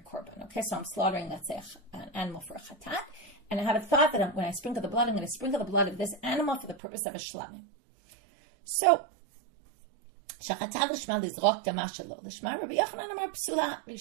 korban. Okay, so I'm slaughtering, let's say, an animal for a chatat, and I have a thought that when I sprinkle the blood, I'm going to sprinkle the blood of this animal for the purpose of a shlamim. So, shachatav lishma lizrok dama shelo lishma. Rabbi Yochanan amar psula.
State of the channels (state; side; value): drops out; left; at 6.8 s